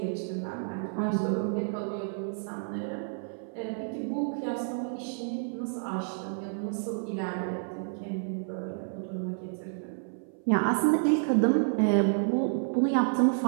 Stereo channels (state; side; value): silent; left; 58 dB below the other